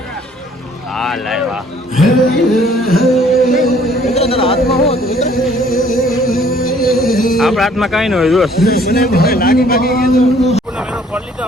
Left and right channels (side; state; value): both; normal; correlation 0.59